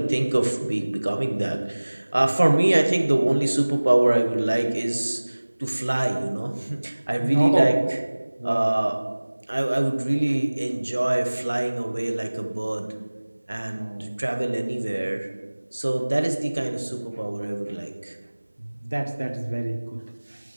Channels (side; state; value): both; inverted; correlation -1.00